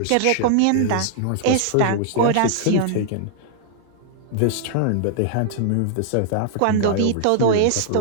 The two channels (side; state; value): both; different; correlation -0.01